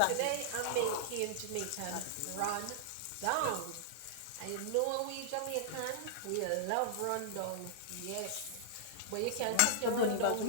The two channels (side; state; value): both; different; correlation -0.01